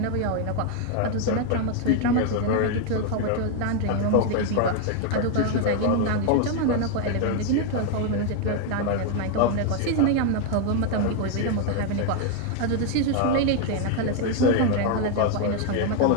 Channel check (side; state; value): both; different; correlation 0.01